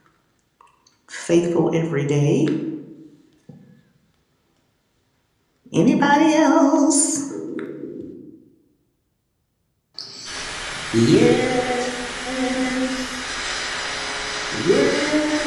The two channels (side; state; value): both; identical; correlation 1.00